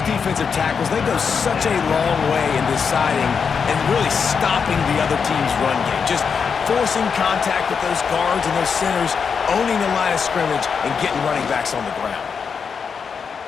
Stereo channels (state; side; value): quieter; right; 6.1 dB